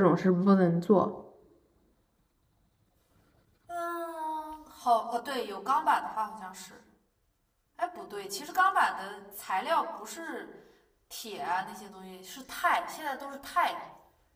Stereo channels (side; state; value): both; identical; correlation 1.00